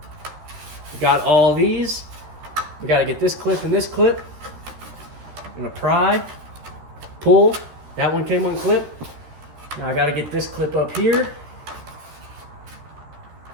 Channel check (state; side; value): late; left; 13 ms